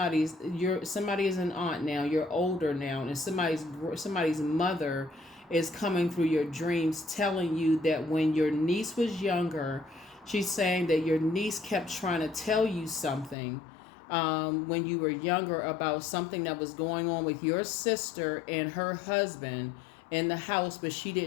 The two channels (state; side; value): drops out; right; at 13.4 s